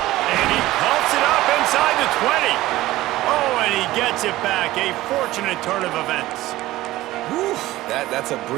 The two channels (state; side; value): quieter; left; 16.7 dB